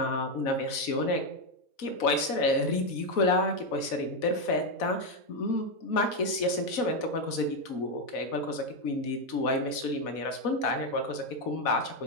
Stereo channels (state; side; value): late; right; 4.1 ms